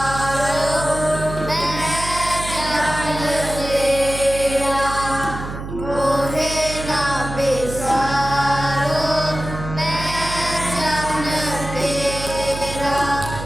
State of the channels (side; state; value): right; noise; hum, 8 dB below the sound